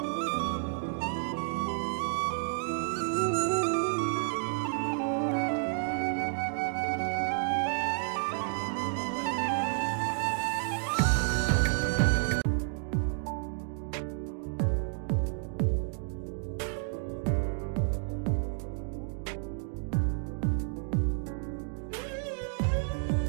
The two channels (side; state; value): left; silent; 57 dB below the other